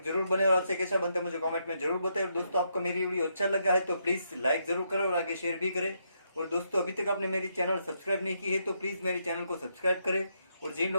जरूर बने और आपसे कैसा बनता है मुझे कमेंट में जरूर बताएं। और दोस्तों आपको मेरी वीडियो अच्छा लगा है तो प्लीज़ लाइक जरूर करें और आगे शेयर भी करें। और दोस्तों अभी तक आपने मेरी चैनल सब्सक्राइब नहीं की है तो प्लीज़ मेरी चैनल को सब्सक्राइब करें। और जिन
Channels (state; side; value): inverted; both; correlation -0.78